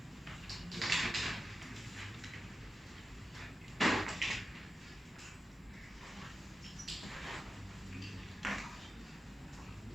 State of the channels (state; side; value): normal; both; correlation 0.92